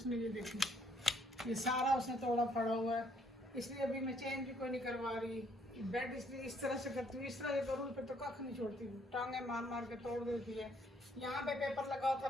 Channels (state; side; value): normal; both; correlation 0.66